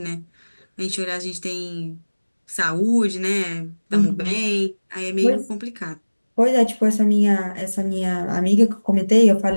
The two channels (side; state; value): both; inverted; correlation -1.00